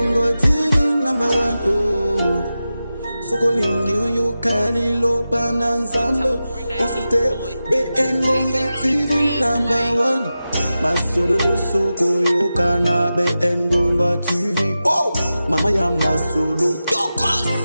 TV number 1 o Soko lingi yo kali lo pananzambo Osite BN Bonga TV number 1 Masolo yo soko yo kana BN Bonga TV oh Mama Yama Solo Tokos.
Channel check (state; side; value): inverted; both; correlation -0.93